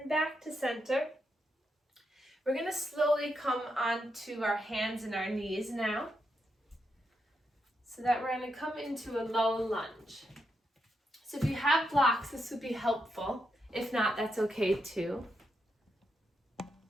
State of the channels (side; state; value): both; normal; correlation 0.83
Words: back to center. We're going to slowly come onto our hands and our knees now. So that we're going to come into a low lunge. So if you have blocks, this would be helpful. If not, that's okay too.